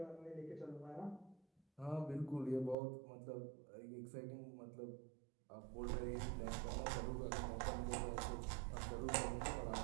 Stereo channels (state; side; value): drops out; left; at 2.8 s